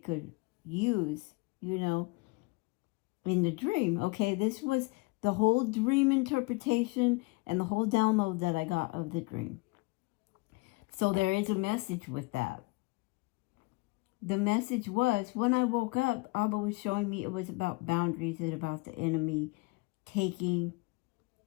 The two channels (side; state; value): right; quieter; 25.1 dB